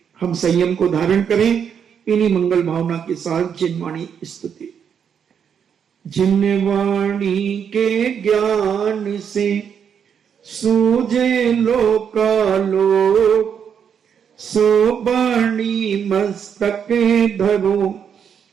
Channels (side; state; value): left; quieter; 7.7 dB